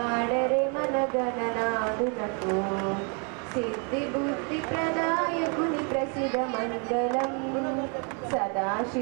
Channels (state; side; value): quieter; left; 37.4 dB